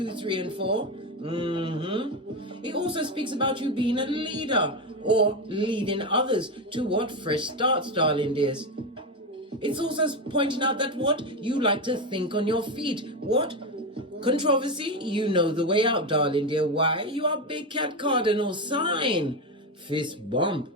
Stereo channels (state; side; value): normal; both; correlation 0.14